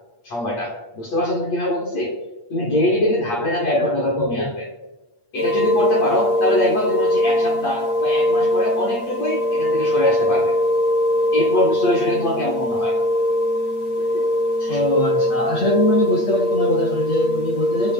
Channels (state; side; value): late; right; 8.5 ms